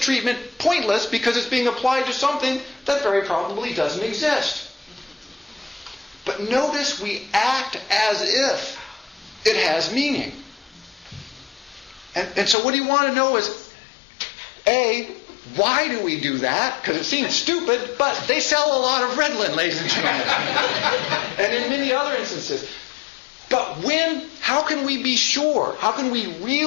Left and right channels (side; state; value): right; drops out; at 12.6 s